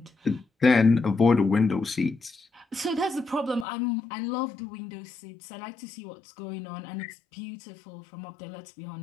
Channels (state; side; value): drops out; right; at 3.7 s